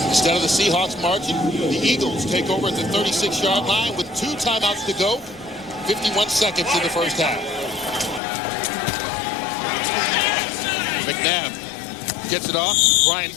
Instead of the Seahawks marching, the Eagles take over at the 36-yard line with 2 timeouts to go. 51 seconds in the first half. McNabb gets it off. Brian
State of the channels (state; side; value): drops out; right; at 8.2 s